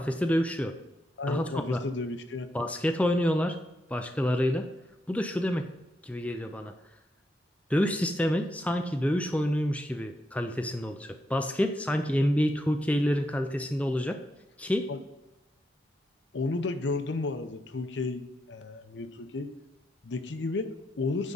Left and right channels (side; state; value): both; normal; correlation 0.82